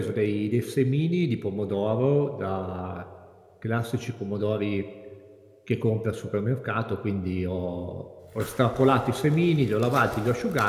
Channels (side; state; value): both; identical; correlation 1.00